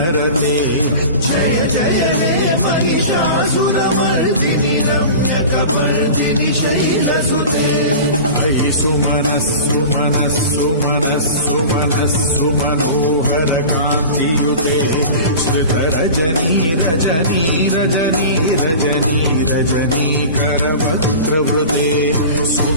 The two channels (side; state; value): both; inverted; correlation -0.35